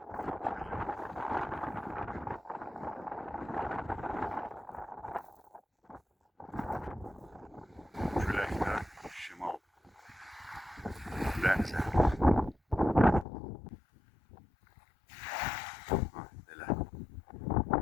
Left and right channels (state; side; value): drops out; right; at 13.2 s